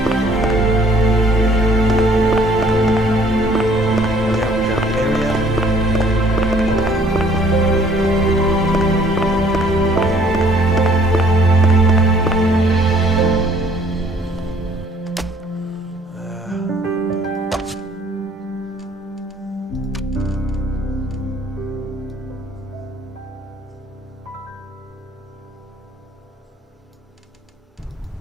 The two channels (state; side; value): normal; both; correlation 0.59